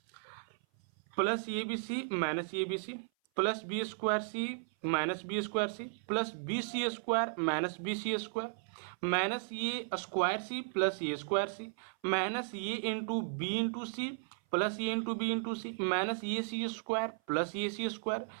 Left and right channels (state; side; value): silent; left; 54 dB below the other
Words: Plus A B C minus A B C plus B square C minus B square C plus B C square minus B C square minus A square C plus A square C minus A into C plus A into B into C minus A C square plus A C square